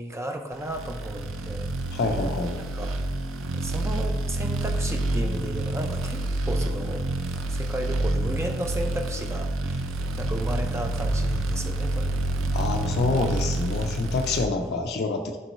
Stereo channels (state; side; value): normal; both; correlation 0.70